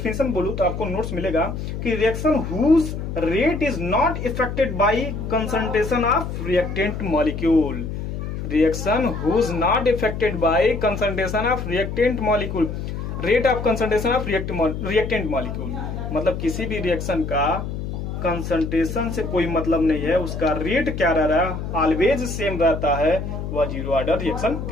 बोलूं तो आपको नोट्स मिलेगा कि reaction whose rate is not affected by concentration of reactant molecule. Reaction whose not affected by concentration of reactant molecule, rate of concentration of reactant molecule. मतलब किसी भी रिएक्शन का कंसंट्रेशन से कोई मतलब नहीं है, उसका रेट क्या रह रहा है, ऑलवेज सेम रहता है, वह जीरो ऑर्डर रिएक्शन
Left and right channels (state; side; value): noise; left; hum, 5 dB below the sound